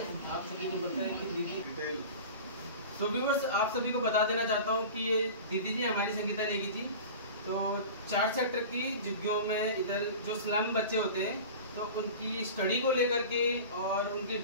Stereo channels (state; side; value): inverted; both; correlation -0.36